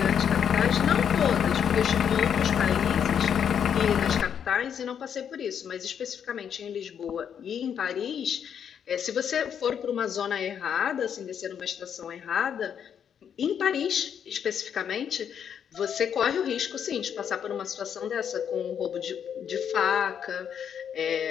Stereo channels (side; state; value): right; quieter; 8.2 dB